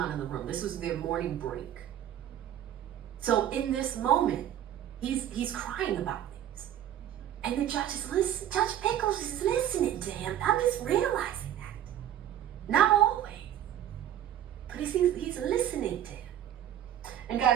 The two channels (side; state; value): left; quieter; 11.1 dB